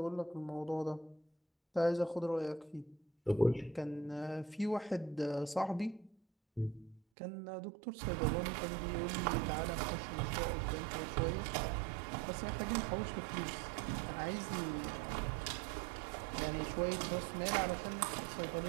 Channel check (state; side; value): drops out; left; at 7.0 s